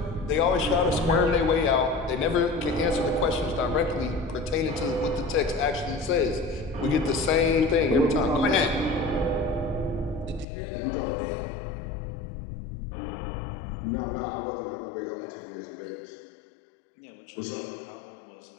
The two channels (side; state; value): right; drops out; at 10.5 s